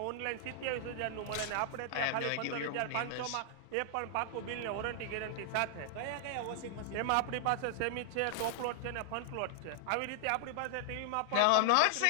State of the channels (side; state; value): both; different; correlation -0.01